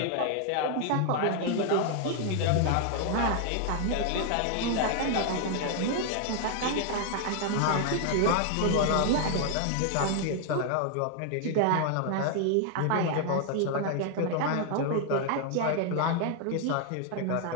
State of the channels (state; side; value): different; both; correlation 0.00